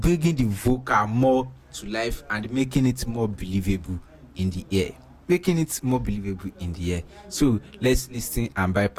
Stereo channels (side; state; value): both; identical; correlation 1.00